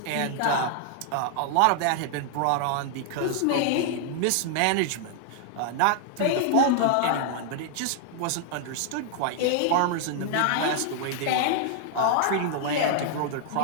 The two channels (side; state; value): both; different; correlation 0.00